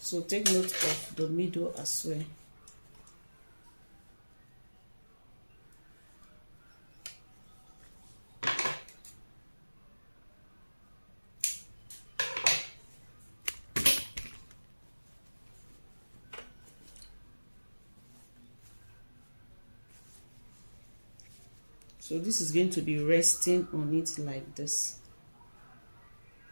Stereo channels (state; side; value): inverted; both; correlation -1.00